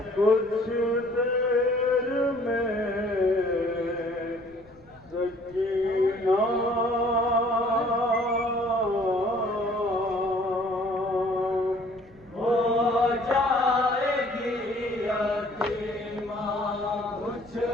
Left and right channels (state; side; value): noise; left; rumble, 28 dB below the sound